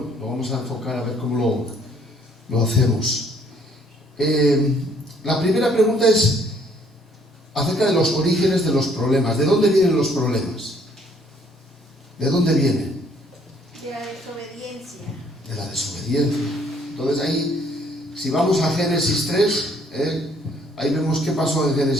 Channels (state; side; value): normal; both; correlation 0.63